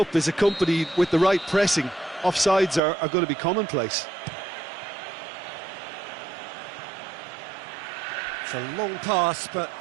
is accompanied with the right pressing, offsides are going to be commonplace. It's a long pass, but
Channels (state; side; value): drops out; left; at 2.8 s